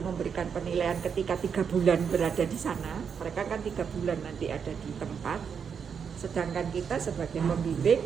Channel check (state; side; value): quieter; left; 6.8 dB